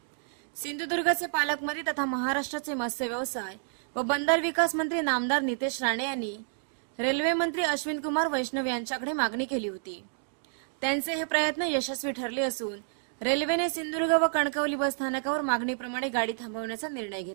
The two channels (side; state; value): left; silent; digital silence